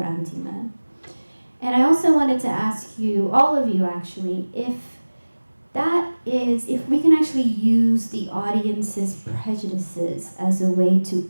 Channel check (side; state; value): both; inverted; correlation -1.00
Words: And I also wanted to ask you, all of you actually, if we can actually use the audience's prejudices as a way to